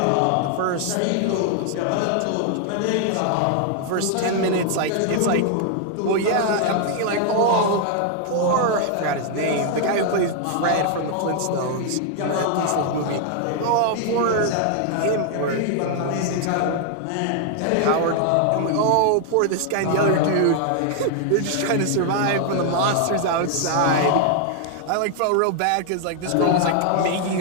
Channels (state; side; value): different; both; correlation 0.00